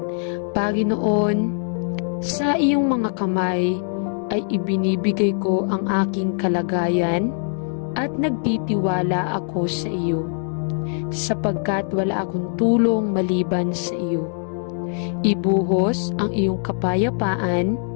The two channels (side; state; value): right; silent; 58 dB below the other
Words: Panginoon, sa iyong mga kamay ay ibinibigay ko ang aking kalagayan at nagtitiwala ako sa iyo, sapagkat wala akong tulong maliban sa iyo. Ibuhos ang iyong kapayapaan